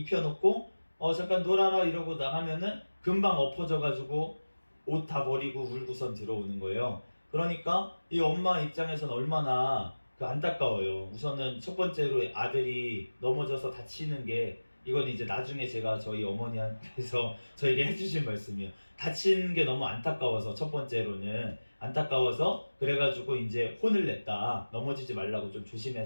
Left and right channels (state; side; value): inverted; both; correlation -1.00